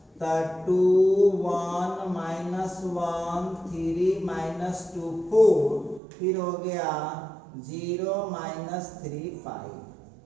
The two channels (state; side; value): drops out; left; at 6.0 s